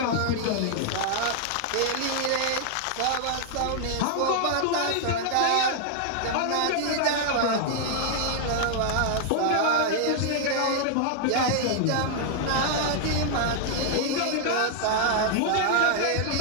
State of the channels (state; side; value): different; both; correlation 0.00